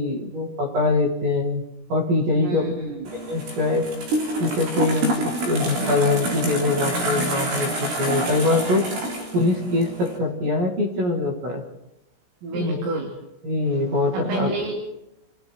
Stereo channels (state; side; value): late; left; 17 ms